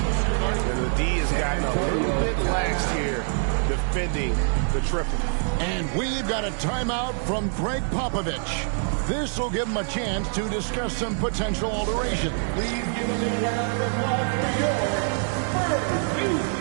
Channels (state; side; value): silent; left; 56 dB below the other